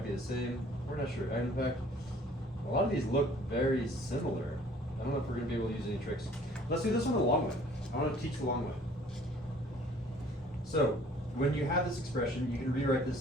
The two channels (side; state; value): both; normal; correlation 0.54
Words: be the same. We're not sure. In fact, a lot of these look very similar. I don't know if we're gonna be able to use any tricks. Let's do this one the long way. I want to teach the long way. So when you have this expression, you can rewrite